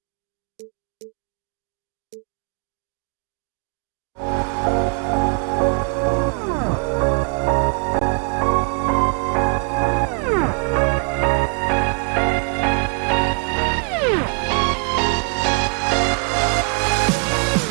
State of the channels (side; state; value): left; quieter; 38.0 dB